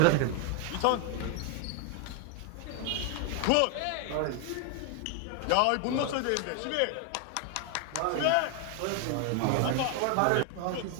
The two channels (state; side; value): different; both; correlation 0.01